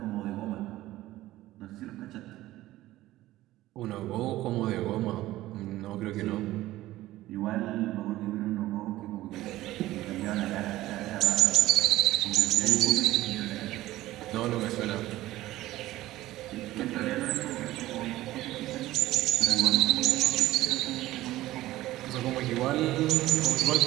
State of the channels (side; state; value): left; quieter; 16.1 dB